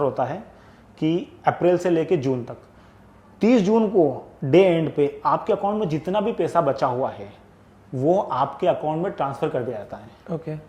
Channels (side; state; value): both; identical; correlation 1.00